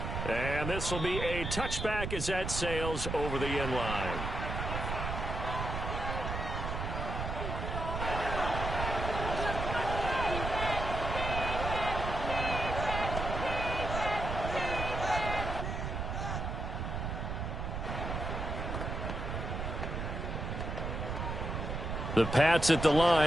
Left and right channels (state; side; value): noise; right; rumble, 3 dB below the sound